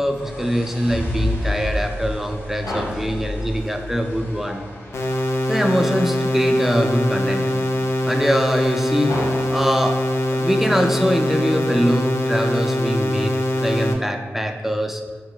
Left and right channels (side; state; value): both; normal; correlation 0.93